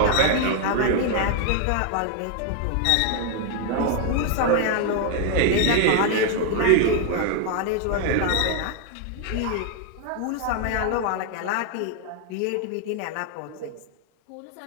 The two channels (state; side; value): different; both; correlation 0.00